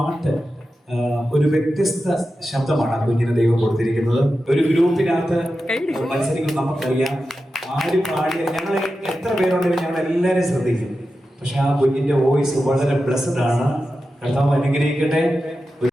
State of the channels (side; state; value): both; normal; correlation 0.91